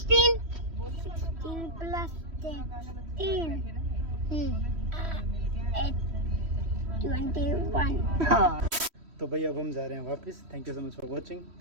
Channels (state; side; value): late; left; 3.1 ms